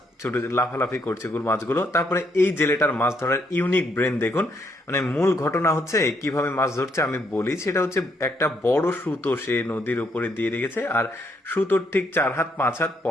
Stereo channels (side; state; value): both; normal; correlation 0.73